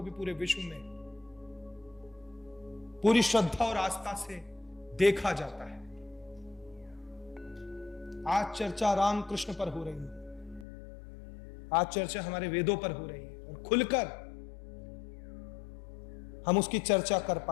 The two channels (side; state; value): right; drops out; at 10.7 s